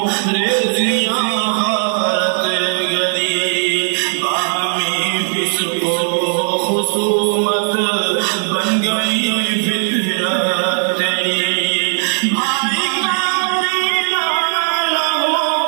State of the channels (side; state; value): left; silent; 68 dB below the other